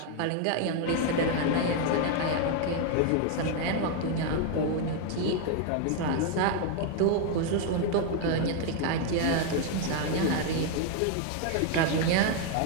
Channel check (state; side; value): different; both; correlation 0.00